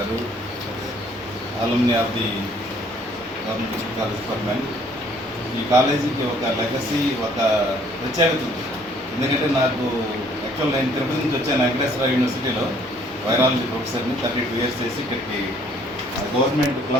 alumni of the government college for men. ఈ కాలేజీకి ఒక లెగసీ, ఒక ప్రత్యేకత ఉంది. ఎందుకంటే నాకు యాక్చువల్ నేను తిరుపతి నుంచి వచ్చాను. వెంకటేశ్వర యూనివర్సిటీలో వైరాలజీ ప్రొఫెసర్ని 32 years చేసి ఇక్కడికి గవర్నమెంట్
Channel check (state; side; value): normal; both; correlation 0.61